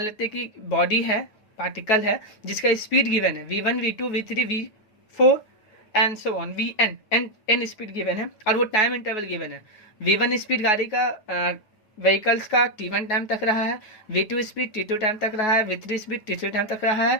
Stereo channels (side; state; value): right; late; 9.3 ms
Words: लेते हैं कि बॉडी है, पार्टिकल है, जिसका स्पीड गिवन है V1 V2 V3 V4 and so on, Vn n speed given है, और वो टाइम इंटरवल गिवन है। V1 स्पीड गाड़ी का व्हीकल्स का T1 टाइम तक रहा है, V2 स्पीड T2 टाइम तक रहा है, V3 स्पीड T3 टाइम तक रहा